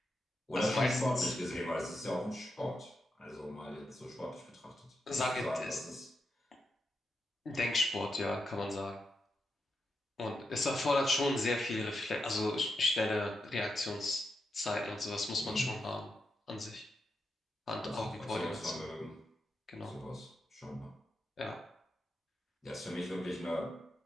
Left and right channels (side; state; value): both; normal; correlation 0.85